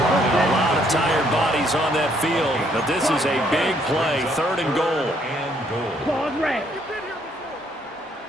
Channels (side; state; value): both; normal; correlation 0.68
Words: lot of tired bodies on that field, but this is a big play, 3rd and goal. Claws red.